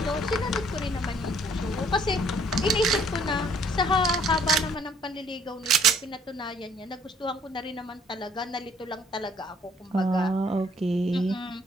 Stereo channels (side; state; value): both; normal; correlation 0.62